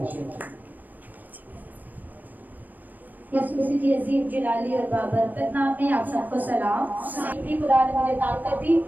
یسوع مسیح کی عظیم جلالی اور بابرکت نام میں آپ سب کو سلام۔ خدا نے مجھے طاقت دی،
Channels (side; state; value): left; late; 0.086 ms